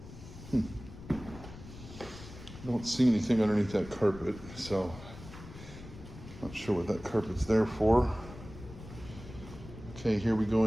Don't see anything underneath that carpet, so not sure what that carpet's there for. Okay, here we go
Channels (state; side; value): noise; left; rumble, 15 dB below the sound